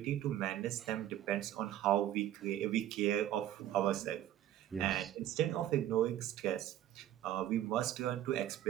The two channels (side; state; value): left; quieter; 12.4 dB